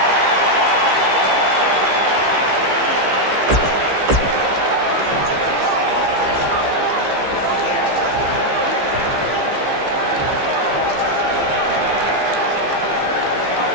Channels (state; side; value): late; left; 15 ms